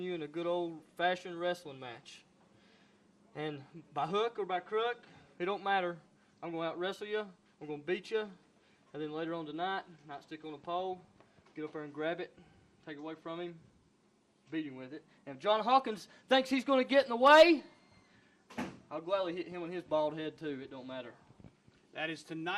you in a good old-fashioned wrestling match. And by hook or by crook, it don't matter. I'm going to out-wrestle you. I'm going to beat you. And then later on tonight, nightstick on a pole, get up there and grab it, take it away from him, beat him with it. And if John Hawkins thinks he's going to get in the way, I'll gladly hit him on his bald head too. It don't matter. That is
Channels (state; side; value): identical; both; correlation 1.00